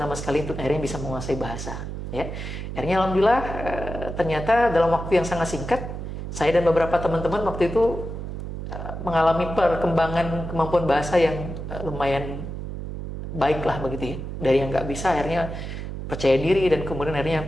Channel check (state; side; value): noise; right; hum, 7 dB below the sound